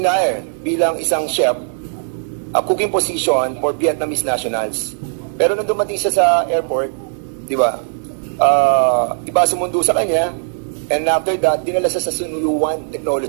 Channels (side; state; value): left; silent; 60 dB below the other